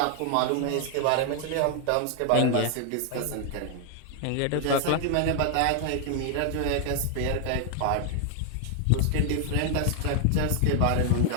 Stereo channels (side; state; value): both; different; correlation 0.00